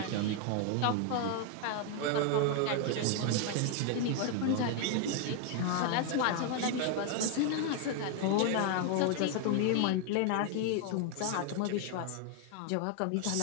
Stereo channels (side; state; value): both; different; correlation 0.00